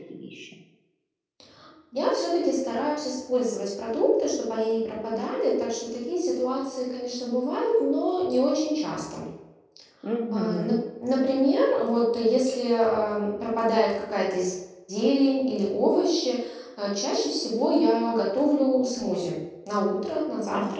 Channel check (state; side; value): identical; both; correlation 1.00